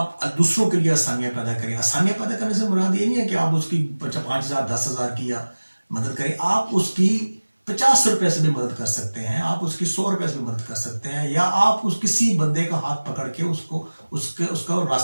दूसरों के लिए आसानियाँ पैदा करें। आसानियाँ पैदा करने से मुराद ये नहीं है कि आप उसकी 5,000 10,000 की या मदद करें, आप उसकी 50 रुपए से भी मदद कर सकते हैं, आप उसकी 100 रुपए से भी मदद कर सकते हैं, या आप उस किसी बंदे का हाथ पकड़ के उसका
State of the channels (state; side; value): inverted; both; correlation -1.00